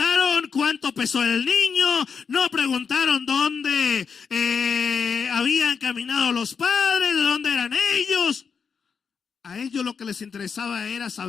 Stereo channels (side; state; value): right; quieter; 6.1 dB